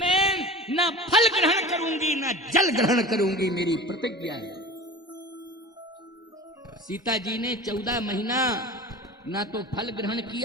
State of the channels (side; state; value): both; normal; correlation 0.36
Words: ना फल ग्रहण करूंगी ना जल ग्रहण करूंगी, मेरी प्रतिज्ञा है। सीता जी ने 14 महीना ना तो फल ग्रहण